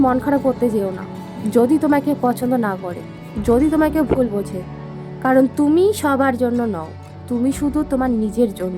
মন খারাপ করতে যেও না যদি তোমাকে পছন্দ না করে, যদি তোমাকে ভুল বোঝে, কারণ তুমি সবার জন্য নও, তুমি শুধু তোমার নিজের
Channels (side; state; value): both; identical; correlation 1.00